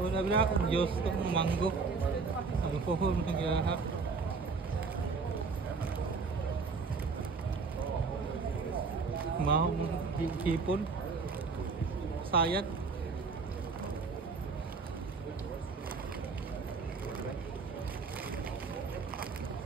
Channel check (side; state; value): left; quieter; 4.6 dB